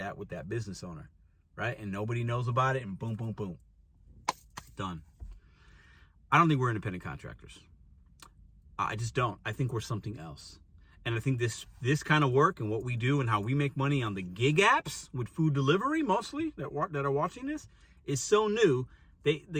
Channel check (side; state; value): both; identical; correlation 1.00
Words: with that business owner, right? And nobody knows about it, and boom, boom, boom. Done. I don't think we're independent contractors. I just don't. I think we're something else. And I think this kind of work and what we do and how we make money on the gig apps with food delivery, mostly, that are watching this, is so new.